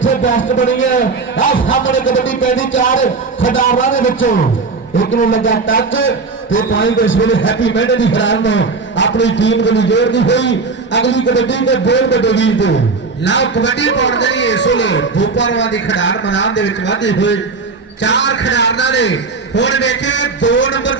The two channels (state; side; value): quieter; left; 4.3 dB